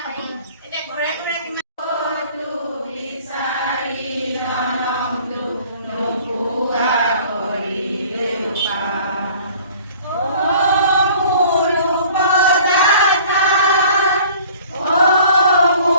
হয় এতিয়া ঘৰে ঘৰে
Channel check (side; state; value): both; inverted; correlation -0.50